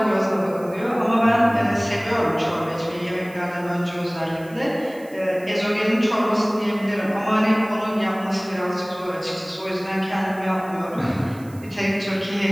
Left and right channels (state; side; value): noise; right; hiss, 24 dB below the sound